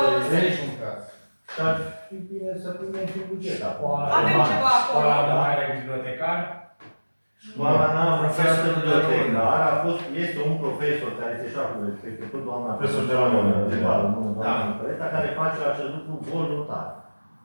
niciun caz. și ar fi bine să punem și buget acolo. Avem ceva acolo. Școala de mare bibliotecar. Școala n-a profesor bibliotecar, este un profesor care este șaful respectiv, tot doamna Profesor de la mână, doamna Păreta, care face acest lucru voluntar.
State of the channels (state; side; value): inverted; both; correlation -1.00